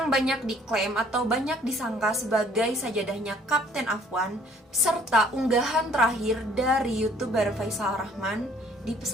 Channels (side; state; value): both; normal; correlation 0.58